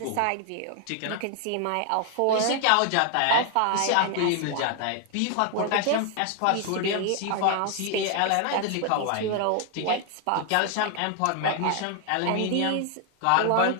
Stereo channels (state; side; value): different; both; correlation 0.00